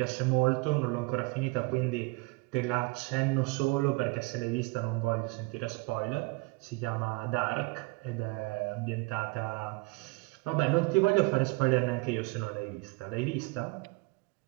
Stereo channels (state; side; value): quieter; left; 26.0 dB